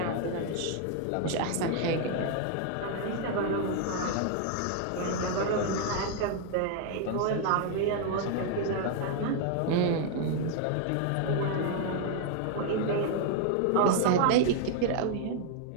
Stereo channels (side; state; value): both; different; correlation 0.00